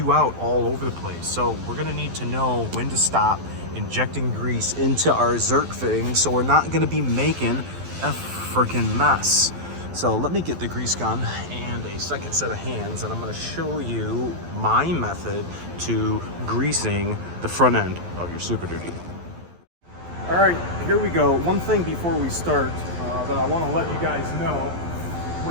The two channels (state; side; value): late; left; 12 ms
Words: out all over the place. So we're going to need to know when to stop injecting grease into our Zerk fitting, so we're not going to be making a freaking mess. So let me get the grease gun and a second set of hands, and I'm going to show you my method to greasing the front end of your Super Duty. All right, here we go. One thing before we start that I want to let you guys know,